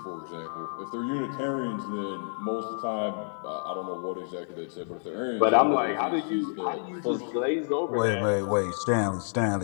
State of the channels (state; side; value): silent; right; digital silence